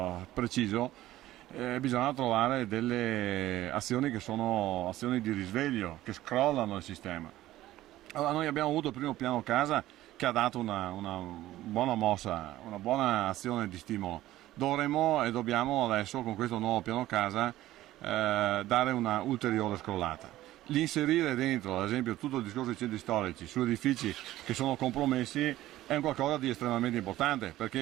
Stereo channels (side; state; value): left; quieter; 15.2 dB